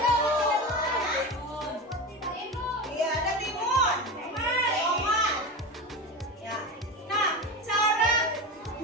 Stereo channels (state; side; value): normal; both; correlation 0.24